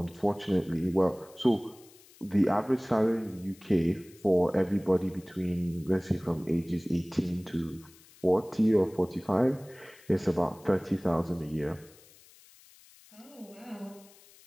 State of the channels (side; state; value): left; noise; hiss, 25 dB below the sound